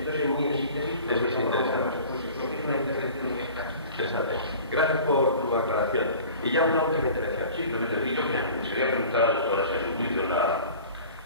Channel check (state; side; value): inverted; both; correlation -0.43